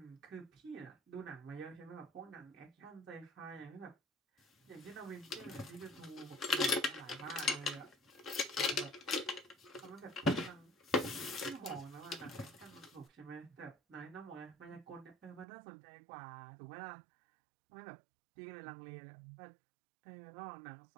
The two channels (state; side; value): drops out; left; at 15.5 s